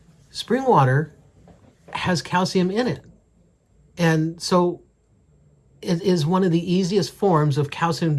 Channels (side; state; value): both; identical; correlation 1.00